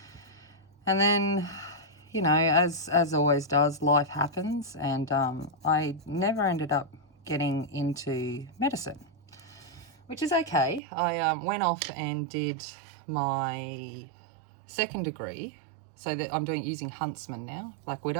And then, you know, as always does, life happens, and I never ended up getting into medicine, which is okay. I went off and did my second degree, so that I'm using Huntsman now, Black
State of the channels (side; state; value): left; drops out; at 10.8 s